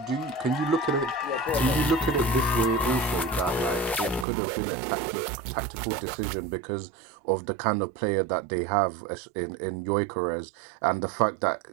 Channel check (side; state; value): left; drops out; at 4.2 s